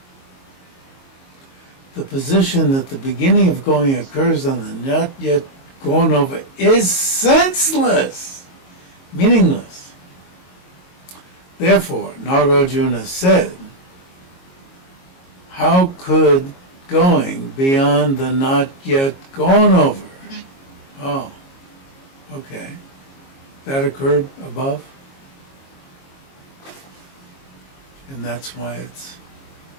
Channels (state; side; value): late; right; 22 ms